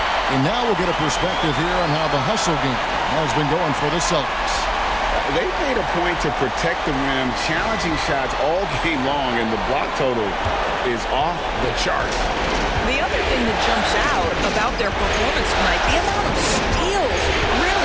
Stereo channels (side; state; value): both; identical; correlation 1.00